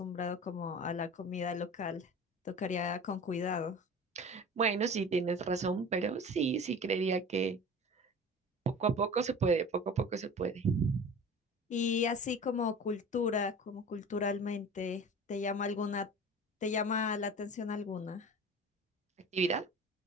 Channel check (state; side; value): normal; both; correlation 0.38